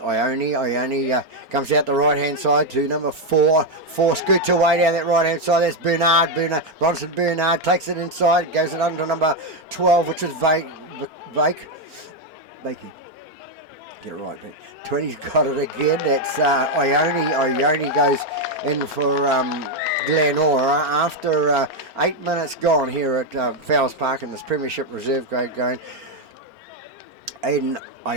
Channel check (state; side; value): late; left; 4.4 ms